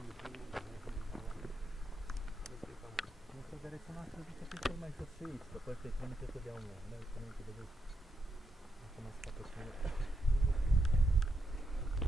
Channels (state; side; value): normal; both; correlation 0.83